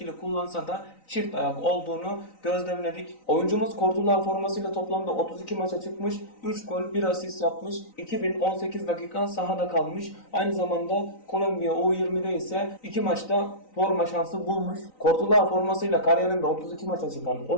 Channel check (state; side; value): late; right; 3.9 ms